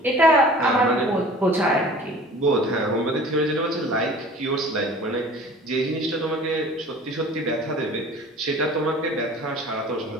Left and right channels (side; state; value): both; normal; correlation 0.45